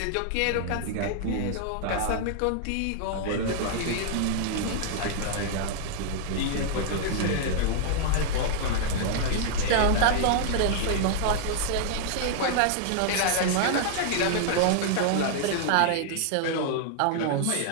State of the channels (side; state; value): both; different; correlation -0.01